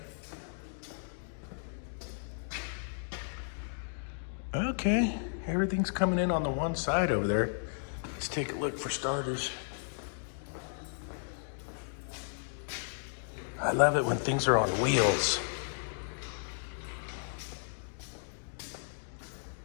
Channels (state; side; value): silent; right; digital silence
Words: Okay, everything's coming in on the one side over there. Let's take a look for starters. I love it when things are on wheels.